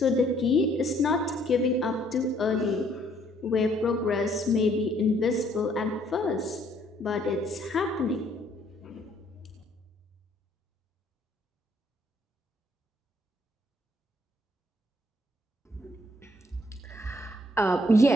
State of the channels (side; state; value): both; normal; correlation 0.65